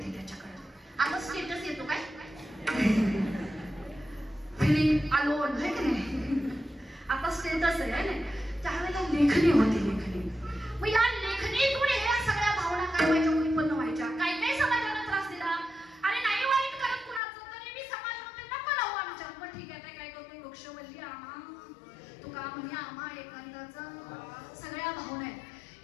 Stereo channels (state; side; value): drops out; right; at 17.2 s